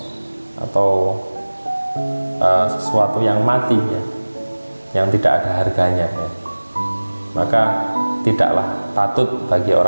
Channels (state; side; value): inverted; both; correlation -1.00